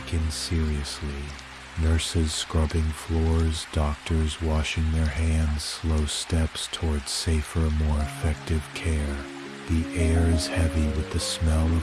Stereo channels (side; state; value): both; identical; correlation 1.00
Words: seriously. Nurses scrubbing floors, doctors washing their hands, slow steps towards safer, more effective care. The air is heavy with the smell